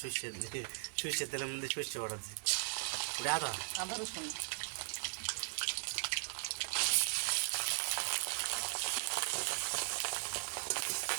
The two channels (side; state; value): left; silent; 52 dB below the other